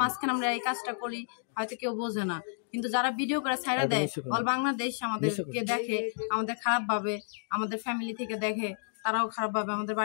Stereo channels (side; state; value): right; silent; digital silence